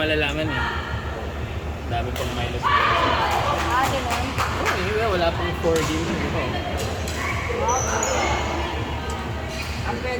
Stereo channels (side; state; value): both; identical; correlation 1.00